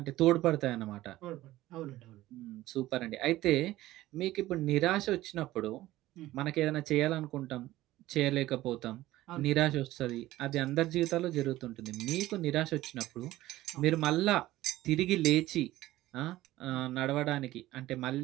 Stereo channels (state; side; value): quieter; left; 16.2 dB